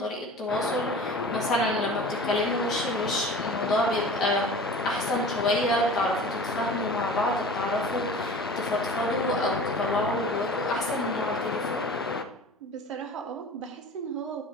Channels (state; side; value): normal; both; correlation 0.39